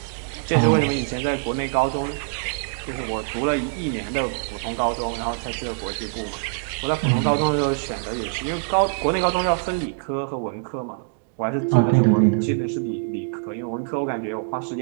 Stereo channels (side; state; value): left; silent; digital silence